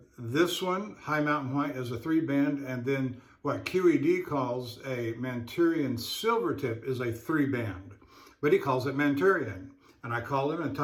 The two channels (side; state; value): both; identical; correlation 1.00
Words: this one, high mountain white, is a 3-band, and then what QED calls a Manchurian silvertip is a 3-band, but he calls it Manchurian. And I called him and